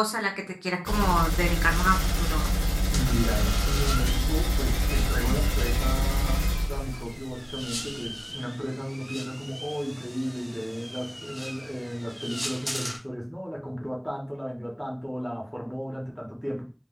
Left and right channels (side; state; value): both; identical; correlation 1.00